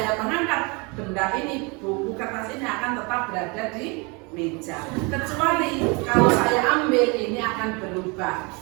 mengangkat, benda ini, buku kertas ini akan tetap berada di meja. Kecuali kalau saya ambil, ini akan berubah,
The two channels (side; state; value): left; quieter; 29.2 dB